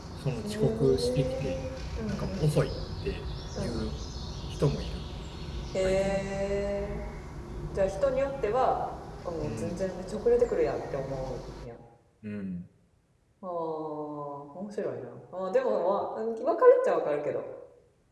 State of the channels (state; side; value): identical; both; correlation 1.00